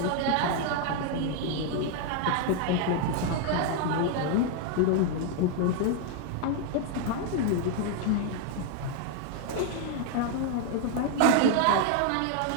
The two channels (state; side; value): different; both; correlation 0.00